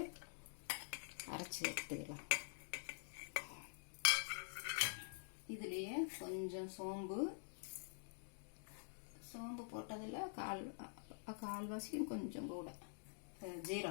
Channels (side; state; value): right; silent; digital silence